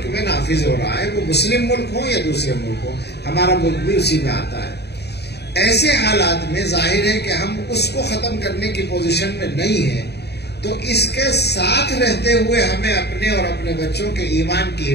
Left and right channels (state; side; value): late; right; 0.48 ms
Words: میں نافذ ہو رہا ہے، وہ مسلم ملک ہو یا دوسرے ملک ہو، ہمارا ملک بھی اسی میں آتا ہے۔ ایسے حالات میں ظاہر ہے کہ ہم اس کو ختم کرنے کی پوزیشن میں نہیں ہیں، تو اس کے ساتھ رہتے ہوئے ہمیں اپنے اور اپنے بچوں کے ایمان کی